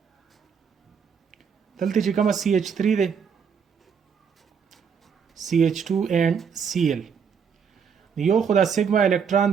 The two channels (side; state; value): left; quieter; 6.6 dB